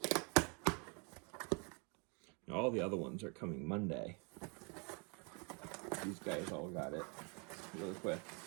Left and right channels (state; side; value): quieter; left; 33.6 dB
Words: Now, all the other ones are coming Monday. These guys all got it really quick.